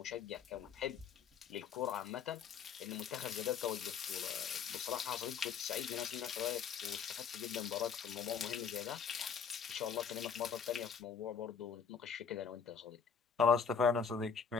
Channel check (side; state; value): right; quieter; 6.6 dB